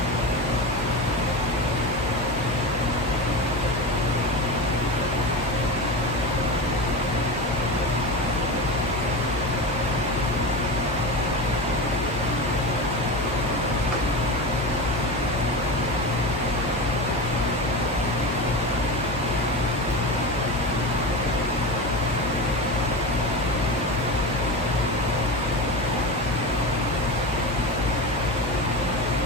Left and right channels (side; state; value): both; normal; correlation 0.23